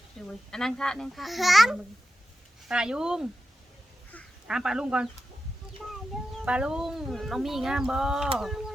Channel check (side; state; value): both; normal; correlation 0.90